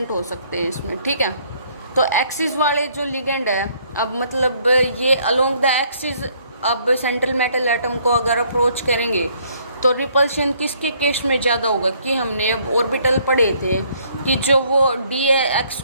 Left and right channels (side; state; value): both; inverted; correlation -0.65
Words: हो सकते हैं इसमें, ठीक है। तो एक्सिस वाले जो लिगेंड है, अब मतलब ये अलोंग द एक्सिस अब सेंट्रल मेटल एटम को अगर अप्रोच करेंगे तो रिपल्शन किसके केस में ज़्यादा होगा, कि हमने अब ऑर्बिटल पढ़े थे कि जो वो DX